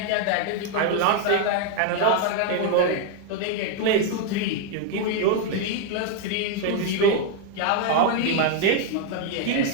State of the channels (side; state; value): both; different; correlation 0.01